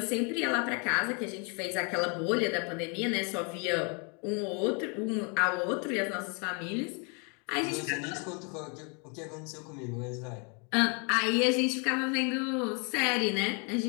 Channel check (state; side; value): quieter; right; 35.4 dB